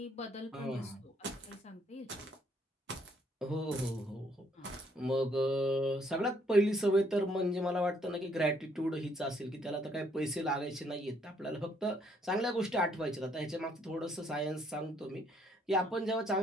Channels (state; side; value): normal; both; correlation 0.68